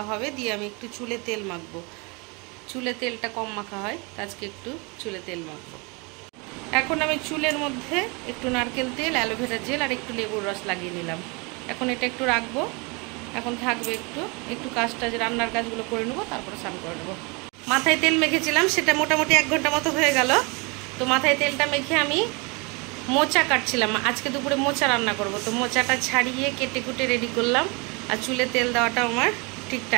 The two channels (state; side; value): quieter; left; 29.4 dB